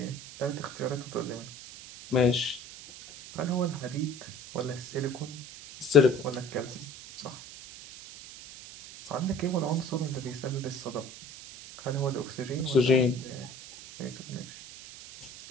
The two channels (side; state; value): right; noise; hiss, 15 dB below the sound